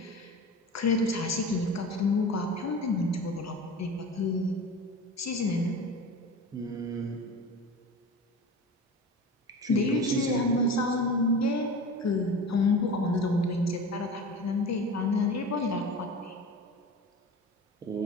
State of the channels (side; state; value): both; normal; correlation 0.33